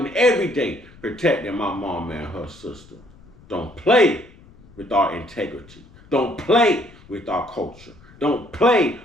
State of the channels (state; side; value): noise; left; rumble, 24 dB below the sound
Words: every day, protecting my mom and her sister. Don't play with our integrity. Don't play with our culture. Don't play